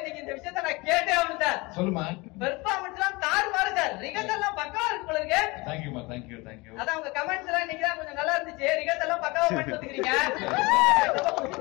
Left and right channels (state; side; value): quieter; right; 24.5 dB